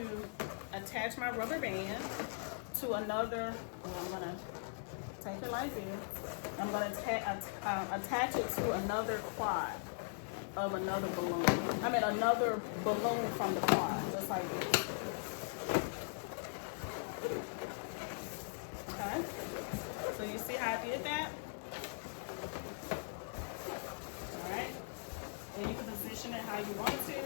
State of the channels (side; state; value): right; silent; digital silence